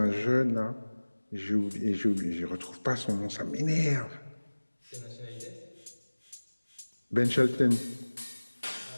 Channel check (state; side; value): inverted; both; correlation -1.00